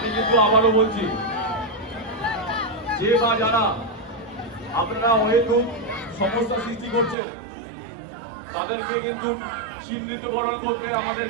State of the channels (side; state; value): left; drops out; at 7.2 s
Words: কিন্তু আবারও বলছি, যে বা যারা আপনারা অহেতুক সমস্যা সৃষ্টি করছেন তাদেরকে কিন্তু চিহ্নিতকরণ করতে আমাদের